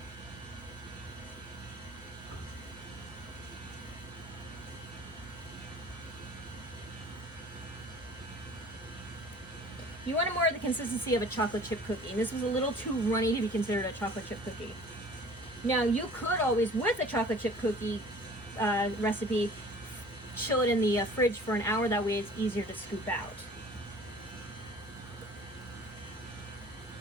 You want more of the consistency of a chocolate chip cookie, and this was a little too runny to be considered a chocolate chip cookie. Now, you could always, with a chocolate chip cookie recipe, chill it in the fridge for an hour. That way it's easier to scoop out.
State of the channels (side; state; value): both; normal; correlation 0.47